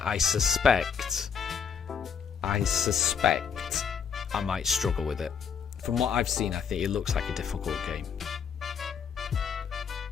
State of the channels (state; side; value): quieter; right; 6.9 dB